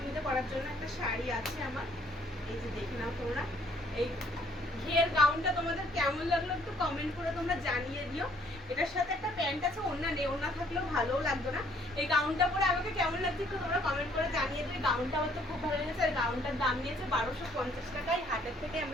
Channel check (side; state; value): both; normal; correlation 0.63